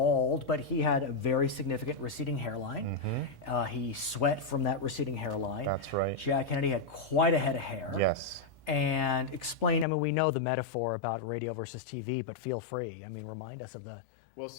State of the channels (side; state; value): right; drops out; at 9.9 s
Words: but he had a very significant receding hairline. He sweat from that receding hairline. That's right. Jack Kennedy had quite a head of hair. Yes. And explain, we know the metaphor about radio versus TV, but feel free. Remind us of the... Well,